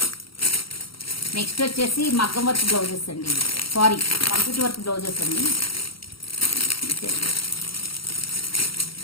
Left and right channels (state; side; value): late; right; 0.74 ms